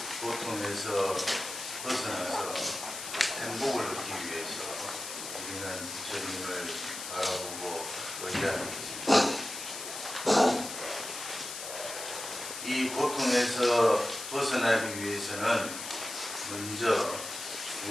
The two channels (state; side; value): noise; left; hiss, 8 dB below the sound